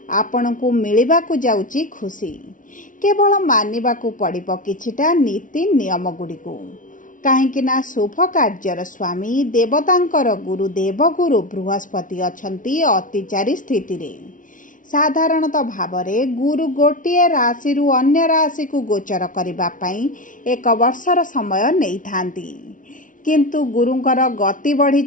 आपणकु मिलिबाकु जाउची खुशी। केवल मानिबाकु पड़िबो किछिटा नीति नियम गुड़िकु काहेकि ना शुभ कार्यर स्वामी देवतांकर गुरु देवगुरु बृहस्पति अछंती अतिचारी स्थिति रे। साधारणतः भावरे गुरु गोटिए राशि रु अन्य राशि को गोचर करिबा पई एक वर्षर समय नै थांती, किंतु गुरुंकर गति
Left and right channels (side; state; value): right; late; 0.38 ms